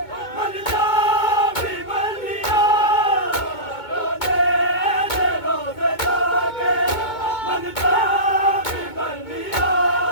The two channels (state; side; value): late; right; 2.2 ms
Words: मन जा भी मर लिया, लाने दे रोज़े जाके मन जा भी मर लिया,